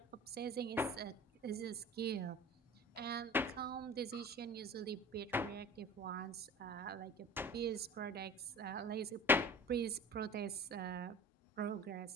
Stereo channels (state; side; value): normal; both; correlation 0.39